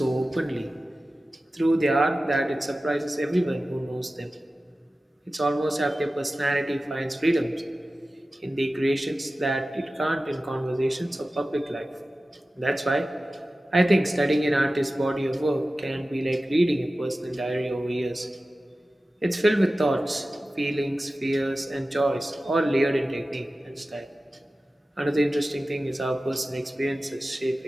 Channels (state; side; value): normal; both; correlation 0.95